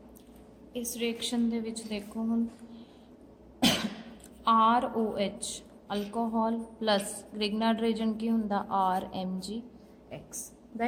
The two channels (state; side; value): identical; both; correlation 1.00